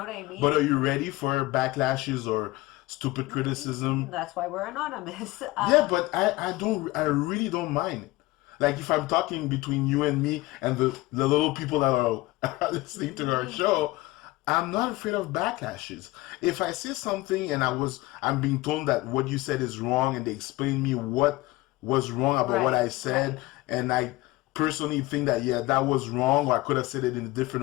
what I mean? But are you ready for backlashes or stupid criticism? That's why we're anonymous. Yeah, but I really don't mind. Like if I'm talking between you and me and the little people that are listening to our show, I'm not afraid of backlashes. If I say something and I'm being told that what you said is wrong and they explain me what was wrong about what Right, I said, right. and I personally think that yeah, that was wrong or I could have said it in a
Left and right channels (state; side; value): quieter; right; 19.6 dB